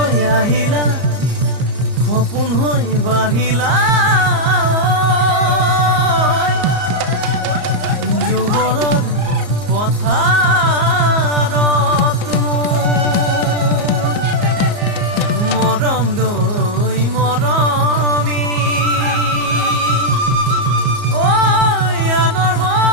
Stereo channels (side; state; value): left; late; 34 ms